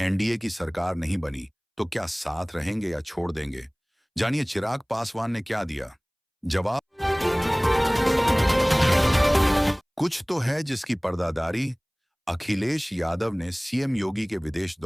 की सरकार नहीं बनी तो क्या साथ रहेंगे या छोड़ देंगे? जानिए चिराग पासवान ने क्या दिया जवाब। कुछ तो है जिसकी पर्दादारी। अखिलेश यादव ने सीएम योगी के विदेश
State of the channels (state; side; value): identical; both; correlation 1.00